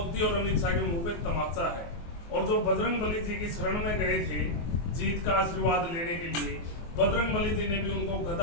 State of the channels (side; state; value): right; late; 24 ms